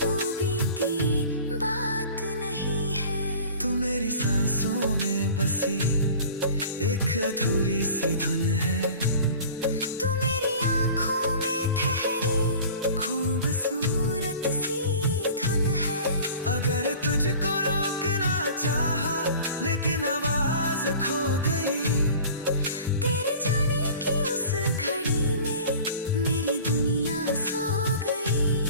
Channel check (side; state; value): both; inverted; correlation -0.42